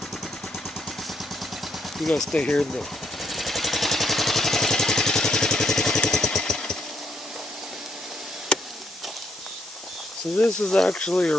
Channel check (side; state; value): both; normal; correlation 0.74